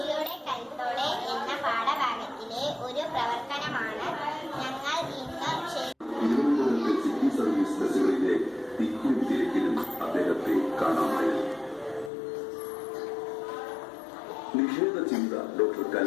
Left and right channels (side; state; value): right; drops out; at 12.1 s